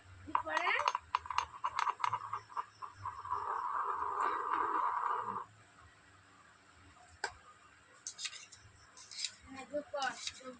পরে যোগ কর যোগ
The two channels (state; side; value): identical; both; correlation 1.00